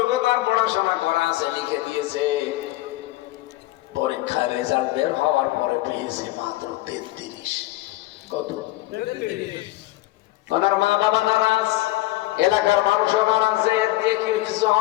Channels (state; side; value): quieter; right; 17.8 dB